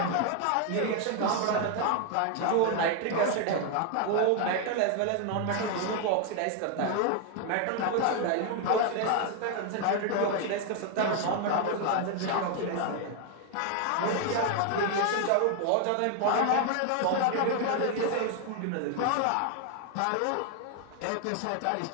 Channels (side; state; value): both; different; correlation 0.01